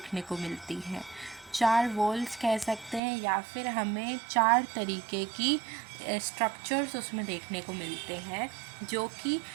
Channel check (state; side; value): drops out; left; at 3.0 s